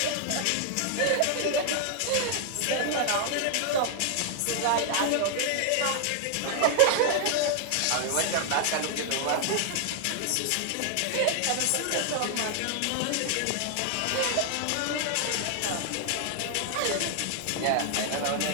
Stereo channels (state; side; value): different; both; correlation 0.00